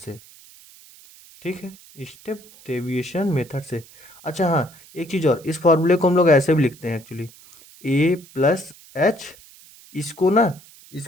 ठीक है, स्टेप डेविएशन मेथड से। अच्छा हाँ, एक चीज़ और, इस फॉर्मूले को हम लोग ऐसे भी लिखते हैं एक्चुअली, ए प्लस एच, इसको ना,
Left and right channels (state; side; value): noise; right; hiss, 23 dB below the sound